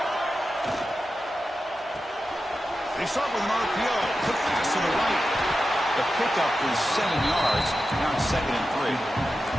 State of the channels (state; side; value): normal; both; correlation 0.91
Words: They start with an RPO. Put pass to the right. The pickup is 7 yards. Now it's 2nd and 3.